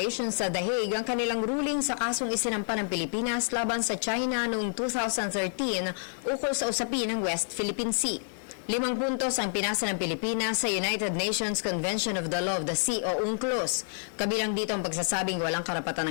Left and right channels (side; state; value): right; silent; digital silence